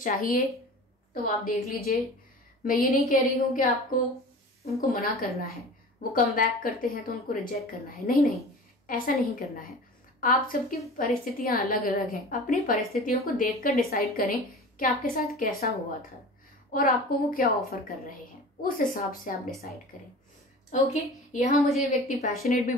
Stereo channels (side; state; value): both; normal; correlation 0.38